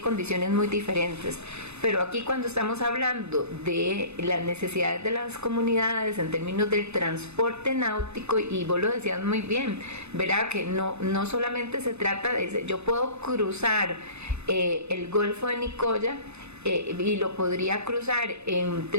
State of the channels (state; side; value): late; left; 0.81 ms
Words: condiciones muy diferentes. Pero aquí, cuando estamos hablando de las necesidades de las comunidades en términos del transporte náutico, y vos lo decías muy bien, ¿verdad?, que no solamente se trata de... Yo puedo cruzar el Golfo de Nicoya y lo podría cruzar en